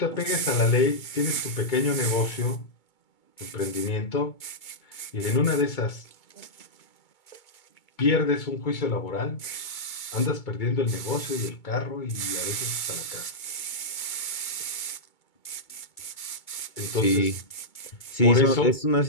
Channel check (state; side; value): late; right; 2.2 ms